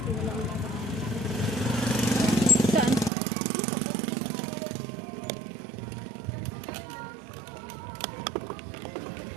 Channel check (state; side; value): drops out; left; at 3.1 s